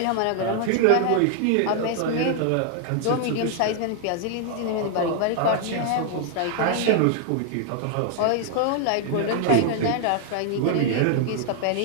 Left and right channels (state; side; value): different; both; correlation 0.00